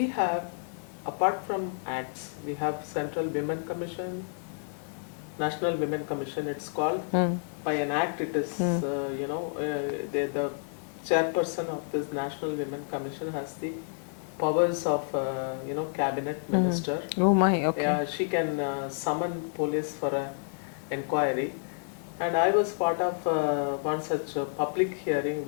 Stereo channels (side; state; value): right; silent; digital silence